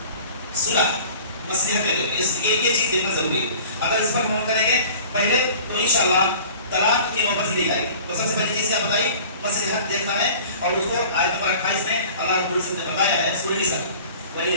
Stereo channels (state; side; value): inverted; both; correlation -0.45